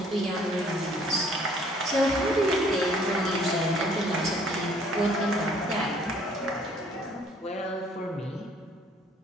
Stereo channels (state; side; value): normal; both; correlation 0.59